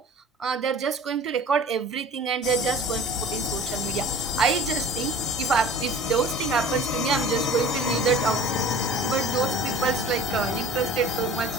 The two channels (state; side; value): normal; both; correlation 0.44